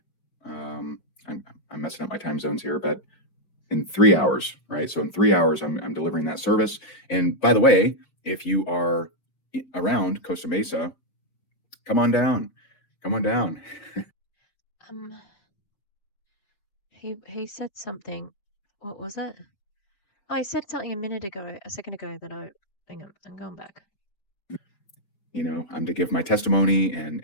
I'm messing up my time zones here, but in 3 hours, right? So in 3 hours, I'm delivering that service. And by the way, if you are around Costa Mesa, come on down. Come on down. Um, he said something. What was it? Oh, I said something a second ago that hang on, I'm going back. I'm to give my testimony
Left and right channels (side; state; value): right; late; 4.9 ms